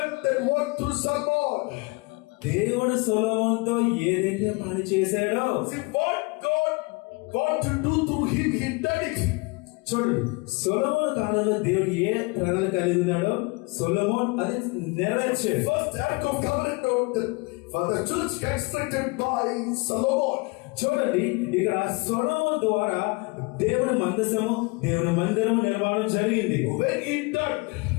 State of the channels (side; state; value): right; quieter; 27.7 dB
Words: that work through Solomon. దేవుడు సొలొమోనుతో ఏదైతే పని చేశాడో, See what God want to do through him, he done it. చూడండి, సొలొమోను కాలంలో దేవుడు ఏ ప్రణాళిక కలిగి ఉన్నాడో సొలొమోన్ అది నెరవేర్చాడు. First Ark of Covenant for the church constructed by Solomon. చూడండి, ఇక్కడ సొలొమోను ద్వారా దేవుని మందసము, దేవుని మందిరము నిర్మాణం జరిగింది. When he done,